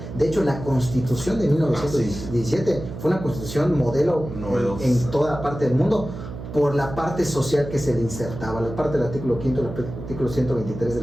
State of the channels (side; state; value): right; noise; hum, 10 dB below the sound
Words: De hecho, la Constitución de 1917 fue una Constitución modelo en toda parte del mundo, por la parte social que se le insertaba. La parte del artículo 5, el artículo 123 de